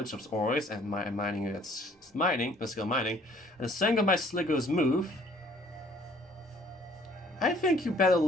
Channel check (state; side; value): normal; both; correlation 0.58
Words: of ores and my skill mining, and the strength of my Sliggoo's move, I think you better